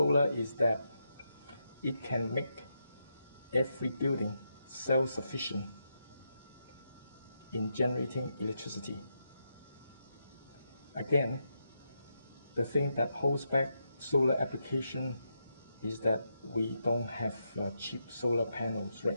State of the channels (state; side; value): inverted; both; correlation -0.83